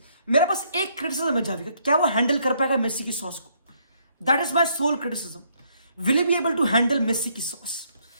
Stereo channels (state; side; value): inverted; both; correlation -0.70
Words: मेरा पास एक क्रिटिसिज्म है जावी का, क्या वो हैंडल कर पाएगा मेसी की सॉस को, that is my sole criticism. Will be able to handle Messi की सॉस